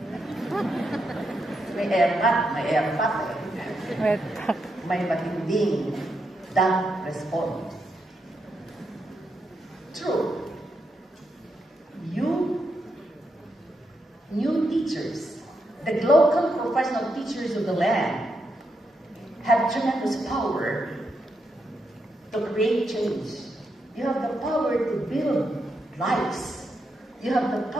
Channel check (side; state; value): both; normal; correlation 0.83